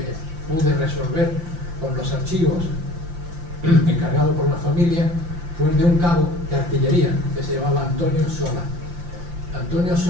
pude resolver con los archivos encargado por la familia fue el de un cabo de artillería que se llamaba Antonio Sola. Antonio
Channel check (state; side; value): late; left; 5.8 ms